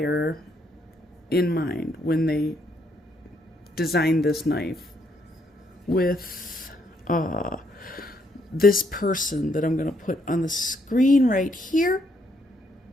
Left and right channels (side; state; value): both; normal; correlation 0.73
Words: in mind when they designed this knife with this person that I'm going to put on the screen right here.